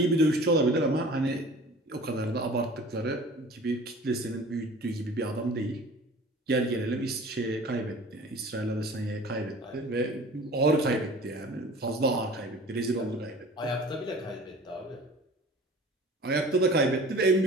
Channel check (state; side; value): normal; both; correlation 0.44